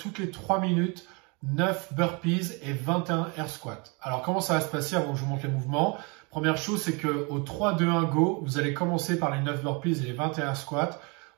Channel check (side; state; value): left; quieter; 30.7 dB